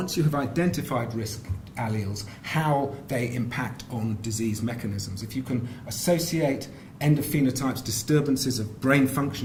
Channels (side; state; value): both; identical; correlation 1.00